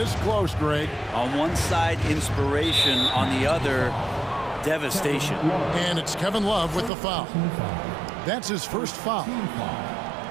close, Greg. On one side, inspiration. On the other, devastation. And it's Kevin Love with the foul. That's his first foul.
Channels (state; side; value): drops out; left; at 6.9 s